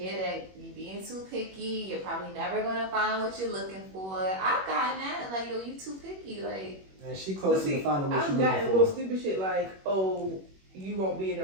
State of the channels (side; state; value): left; late; 21 ms